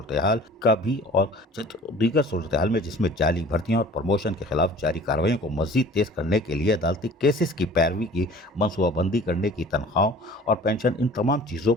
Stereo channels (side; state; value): both; normal; correlation 0.46